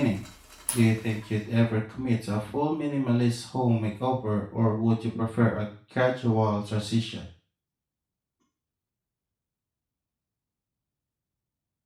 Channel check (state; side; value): identical; both; correlation 1.00